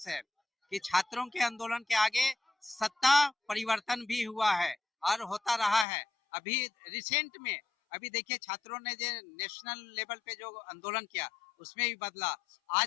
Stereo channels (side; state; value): right; drops out; at 5.9 s